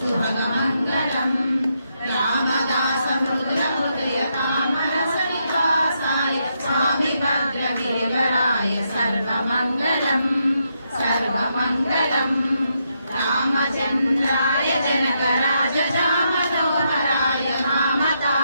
शुभमङ्गलम् रामदास मृदुल हृदय तामरसनिवासाय स्वामी भद्रगिरिवराय सर्वमङ्गलम् सर्वमङ्गलम् रामचन्द्राय जनकराजजामनोहराय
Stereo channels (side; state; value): both; inverted; correlation -0.80